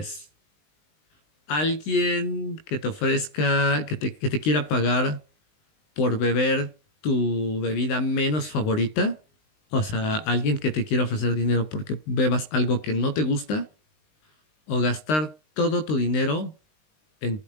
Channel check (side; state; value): right; late; 19 ms